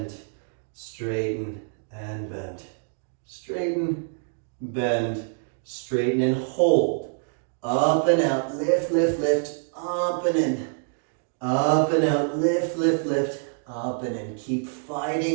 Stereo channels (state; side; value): silent; left; digital silence